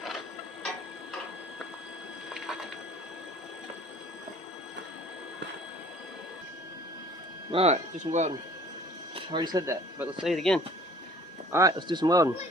Alright, do some welding. I already said that, but let's say it again. Alright, let's do some welding.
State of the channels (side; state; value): both; normal; correlation 0.51